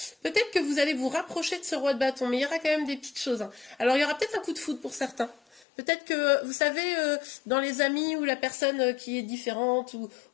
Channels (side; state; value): right; drops out; at 5.6 s